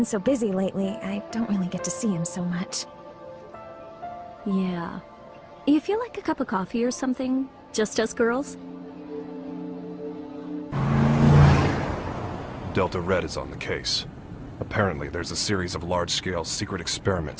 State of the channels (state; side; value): identical; both; correlation 1.00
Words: so busy lately. I don't really get to see him so much. Yeah. You feel like a cup of coffee or something? Just us girls? Delta Red is on the case. Apparently, there's a series of large-scale secret